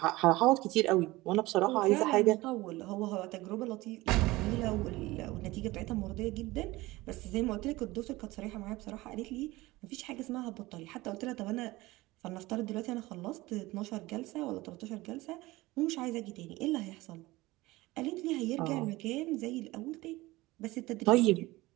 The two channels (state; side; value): quieter; left; 19.7 dB